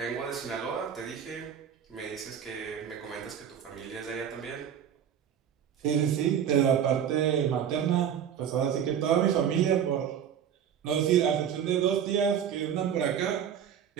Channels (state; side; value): quieter; left; 8.9 dB